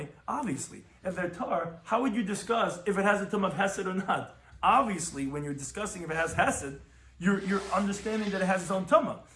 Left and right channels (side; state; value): both; identical; correlation 1.00